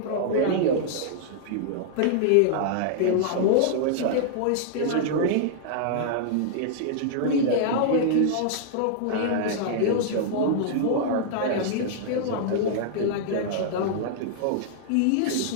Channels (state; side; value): different; both; correlation -0.01